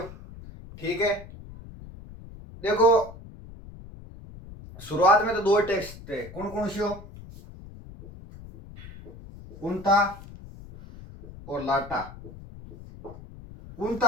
ठीक है, देखो शुरुआत में तो दो टैक्स थे। कौन कौन से हो? कुंता और लाटा।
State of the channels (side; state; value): left; noise; rumble, 16 dB below the sound